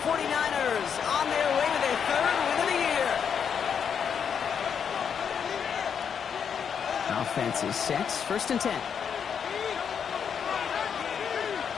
49ers on their way to their third win of the year. Offense is set. First and 10.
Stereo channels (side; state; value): right; quieter; 7.3 dB